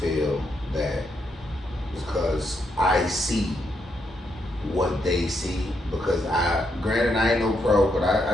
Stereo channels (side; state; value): both; normal; correlation 0.79